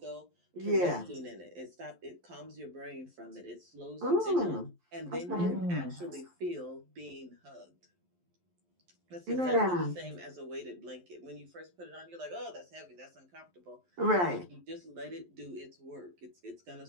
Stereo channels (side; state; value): left; late; 11 ms